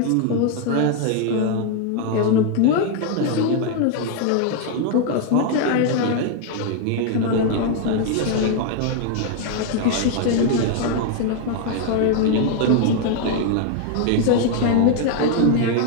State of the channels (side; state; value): both; different; correlation 0.00